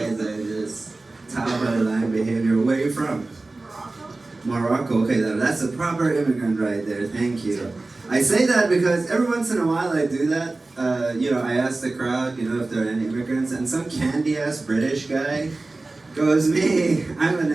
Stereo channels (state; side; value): quieter; left; 3.2 dB